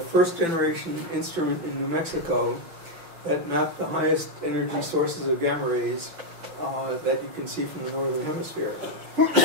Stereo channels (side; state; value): left; late; 6.0 ms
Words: instrument in New Mexico that mapped the highest energy sources of gamma rays that you can see from the northern hemisphere.